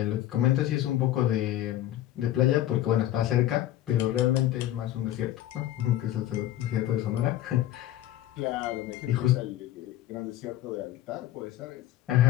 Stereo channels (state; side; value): quieter; right; 13.4 dB